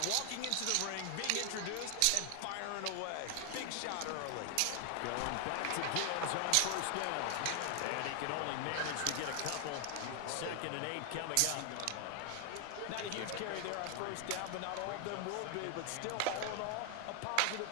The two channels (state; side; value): different; both; correlation 0.00